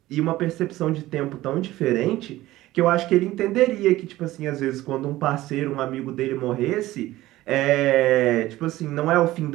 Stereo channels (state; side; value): quieter; left; 16.5 dB